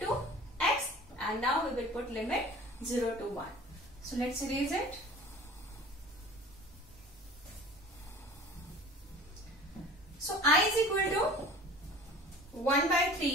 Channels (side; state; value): both; normal; correlation 0.43